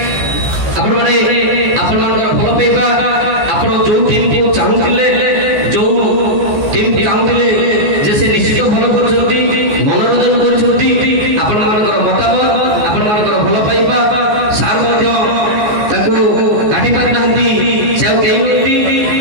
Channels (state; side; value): late; left; 14 ms